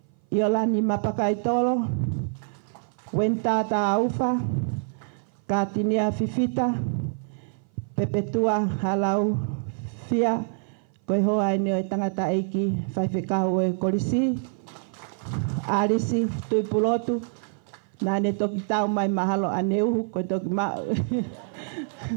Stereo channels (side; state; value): left; silent; 57 dB below the other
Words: i o lani mapakai tolo, wenta ta aufa, ka tinia fifita, pepetua halau fia, koe hoa ene o tangata eiki, whaiwhekau e korisi, arisi, tui pulotu, na ne toki tau mai mahalo aneuhu, koe toki